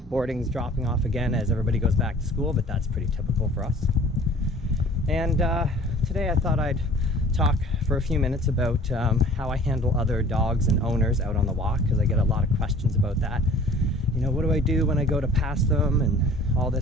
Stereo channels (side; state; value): both; normal; correlation 0.49